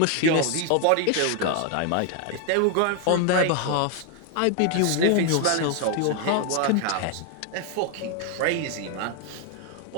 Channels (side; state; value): both; different; correlation 0.00